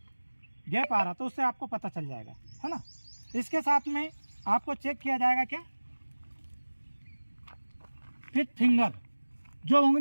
गैप आ रहा, तो उससे आपको पता चल जाएगा, है ना। इसके साथ में आपको चेक किया जाएगा क्या, फिट फिंगर, जो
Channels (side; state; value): both; inverted; correlation -1.00